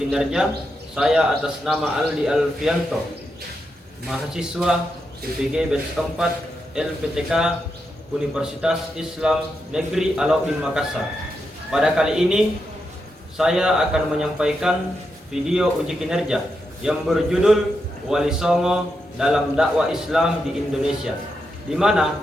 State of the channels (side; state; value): both; normal; correlation 0.85